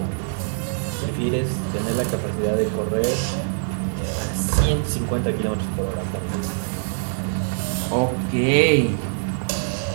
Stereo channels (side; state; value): left; silent; 59 dB below the other